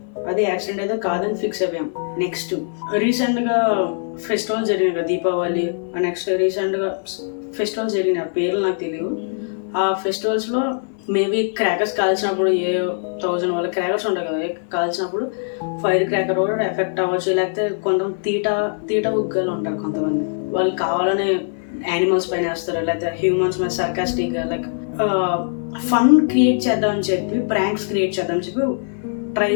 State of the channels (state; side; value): silent; right; 59 dB below the other